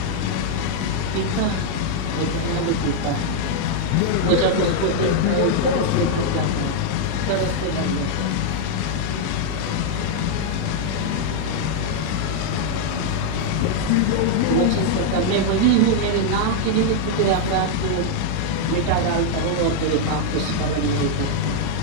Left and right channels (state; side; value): different; both; correlation -0.01